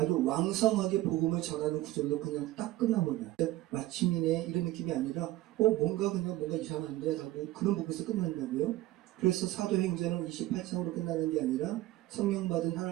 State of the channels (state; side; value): quieter; left; 16.0 dB